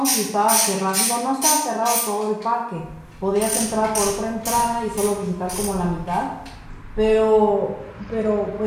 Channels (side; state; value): both; identical; correlation 1.00